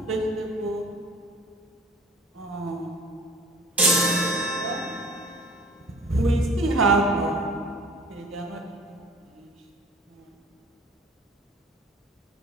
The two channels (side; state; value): both; normal; correlation 0.47